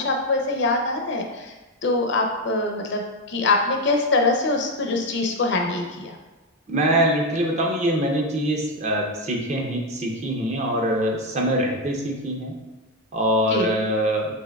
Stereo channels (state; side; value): normal; both; correlation 0.07